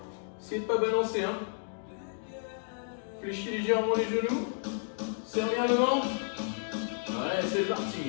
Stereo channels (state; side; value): silent; right; digital silence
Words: Essayez de ne pas balancer. Hein. Fléchis légèrement les genoux. Serre bien le ventre. Ouais, c'est